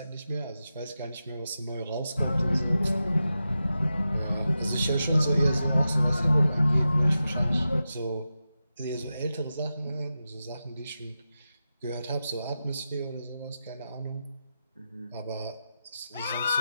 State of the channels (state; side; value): inverted; both; correlation -0.91